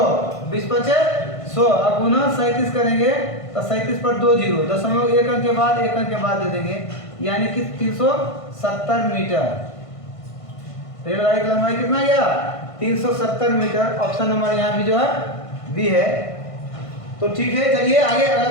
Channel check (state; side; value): late; right; 1.5 ms